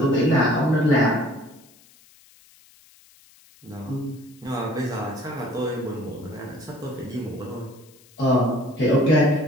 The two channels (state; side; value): noise; left; hiss, 28 dB below the sound